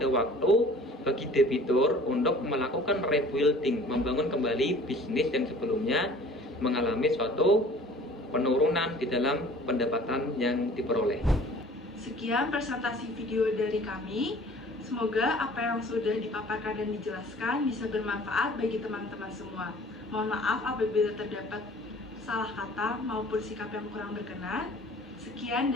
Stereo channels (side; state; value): both; normal; correlation 0.49